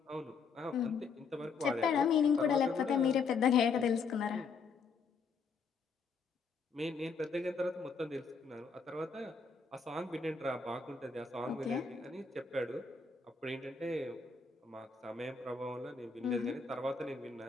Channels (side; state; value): right; quieter; 5.1 dB